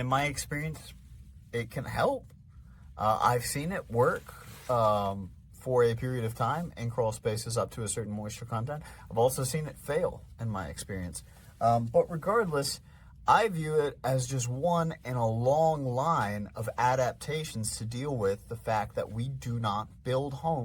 my experience, it can help. I've seen it work for a period of time in crawl spaces up to a certain moisture content. I've also seen it fail in my experience. But regardless, I view it as just one in a long line of adaptations to deal with the fact that we do not build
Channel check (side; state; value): both; identical; correlation 1.00